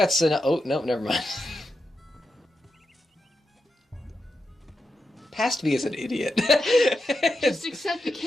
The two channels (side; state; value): both; normal; correlation 0.87